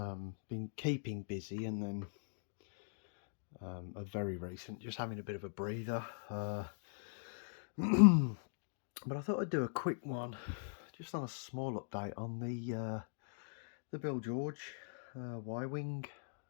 Been keeping busy, and then a very recent, just having a bit of a breather. But I thought I'd do a quick one, just on a small update on the Bill George Y-wing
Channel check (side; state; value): right; silent; digital silence